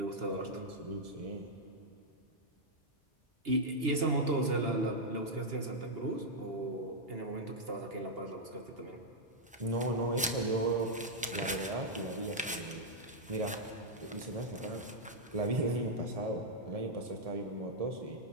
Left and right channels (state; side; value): normal; both; correlation -0.05